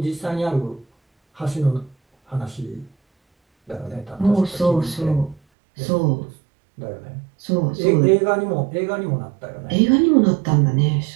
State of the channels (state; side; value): drops out; left; at 5.4 s